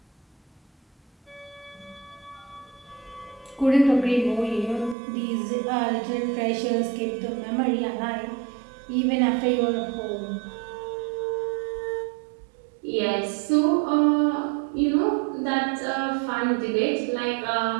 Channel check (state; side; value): drops out; left; at 5.0 s